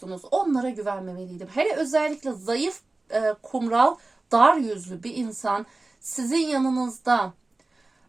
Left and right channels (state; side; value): quieter; left; 3.1 dB